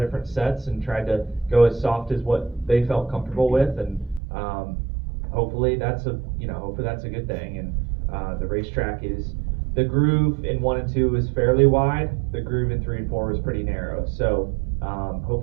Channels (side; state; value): left; drops out; at 4.2 s